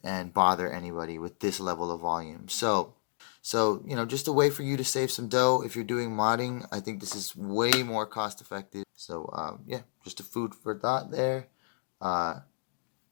and bother anybody with this level of volume. So you know, just a way for you to save some dough if you're doing modding. I think this is way more cost effective. So yeah, just a food for thought there.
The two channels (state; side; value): silent; right; digital silence